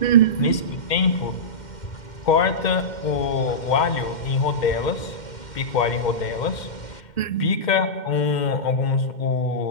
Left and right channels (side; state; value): right; late; 2.1 ms